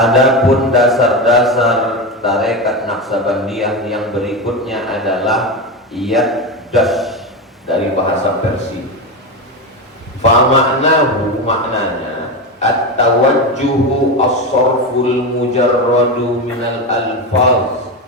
dasar-dasar tarekat Naqsyabandiyah yang berikutnya adalah Yaddash dari bahasa Persia. Fa ma'nahu, maknanya at-tawajjuhu as-sarful mujarradu minal alfaz,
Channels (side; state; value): both; normal; correlation 0.17